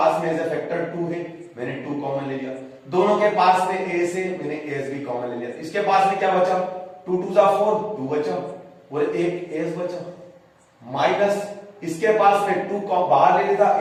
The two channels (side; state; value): both; identical; correlation 1.00